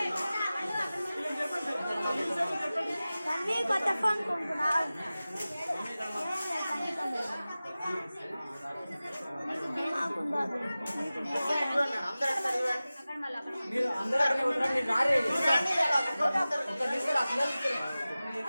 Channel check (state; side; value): inverted; both; correlation -0.97